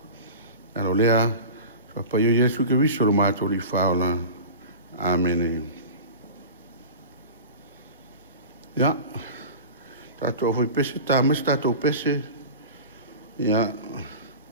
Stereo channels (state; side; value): inverted; both; correlation -0.34